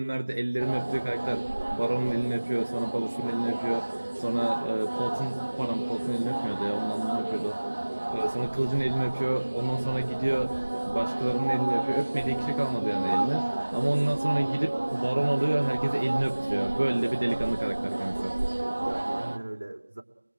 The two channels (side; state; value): both; inverted; correlation -1.00